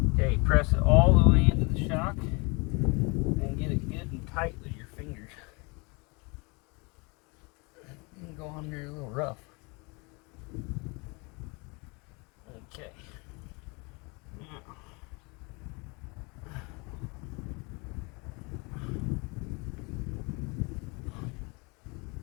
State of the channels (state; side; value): quieter; right; 29.4 dB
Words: Okay, press it all the way into the shock and get it good and tight with your fingers. You can go on there a little rough. Okay.